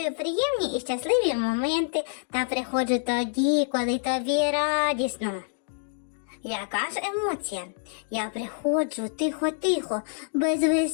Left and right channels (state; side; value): silent; right; digital silence